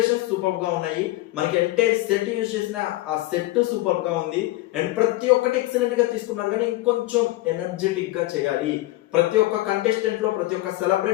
సూపర్ గా ఉన్నాయి. మనకి ఎంటైర్ సెట్ యూజ్ చేసిన ఆ సెట్ సూపర్ గా ఉంది అండ్ ప్రతి ఒక్కటి ఎక్సలెంట్ గా తీసుకున్నారు. కానీ ఇంకొంచెం ఎనర్జెటిక్ గా చేయాలి. ప్రతి ఒక్క కంటెస్టెంట్ లో, ప్రతి ఒక్క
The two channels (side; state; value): right; quieter; 18.4 dB